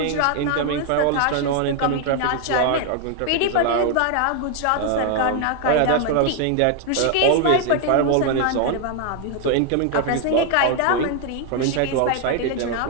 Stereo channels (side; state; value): both; different; correlation 0.00